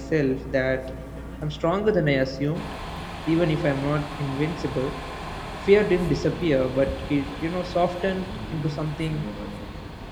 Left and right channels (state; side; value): identical; both; correlation 1.00